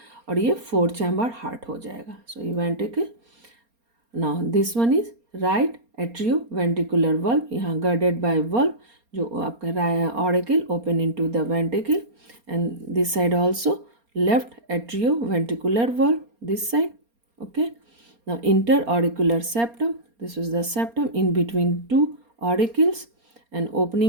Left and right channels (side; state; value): left; late; 4.3 ms